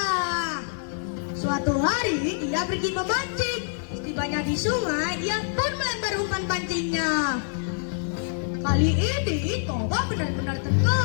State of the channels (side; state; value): right; silent; digital silence